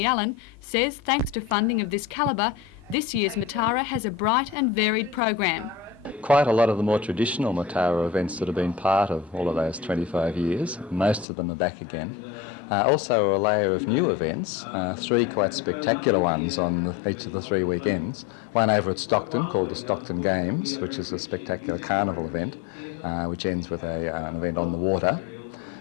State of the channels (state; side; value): drops out; right; at 11.2 s